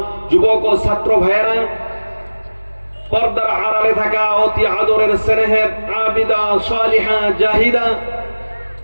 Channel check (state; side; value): inverted; both; correlation -1.00